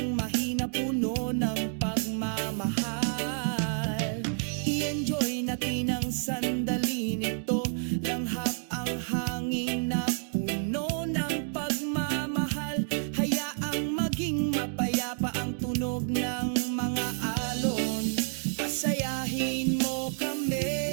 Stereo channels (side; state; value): left; silent; 58 dB below the other